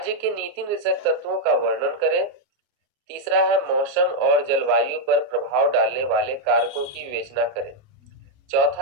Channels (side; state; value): left; late; 29 ms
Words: के नीति निर्देशक तत्वों का वर्णन करें। तीसरा है मौसम और जलवायु पर प्रभाव डालने वाले कारकों की विवेचना करें।